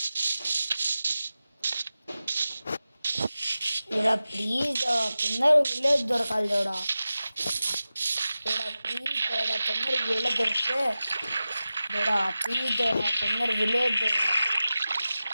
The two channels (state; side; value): inverted; both; correlation -0.94